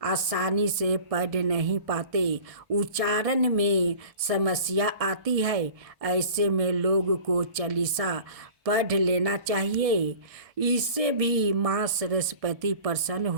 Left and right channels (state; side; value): late; left; 1.6 ms